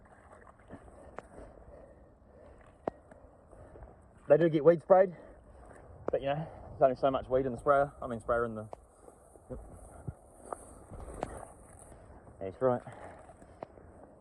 They do get weed sprayed, but you know, there's only so much weed in the sprayer. I mean, sprayer in the. Yep. That's right.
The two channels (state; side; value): identical; both; correlation 1.00